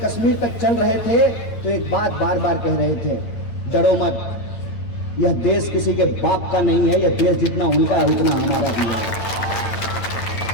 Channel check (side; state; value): right; late; 8.9 ms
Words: तक चल रहे थे तो एक बात बार बार कह रहे थे, डरो मत, यह देश किसी के बाप का नहीं है, यह देश जितना उनका है उतना हमारा भी